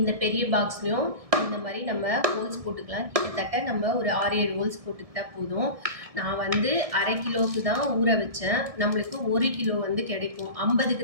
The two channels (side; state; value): left; late; 1.7 ms